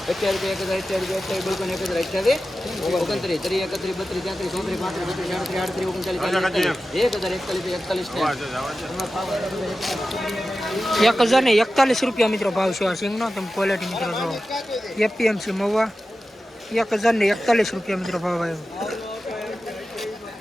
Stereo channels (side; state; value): both; normal; correlation 0.93